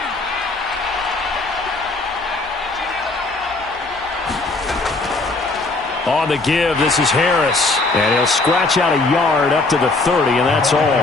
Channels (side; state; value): right; quieter; 3.3 dB